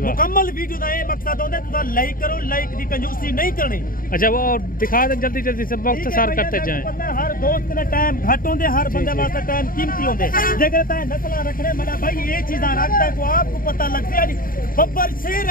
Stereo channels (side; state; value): right; late; 0.41 ms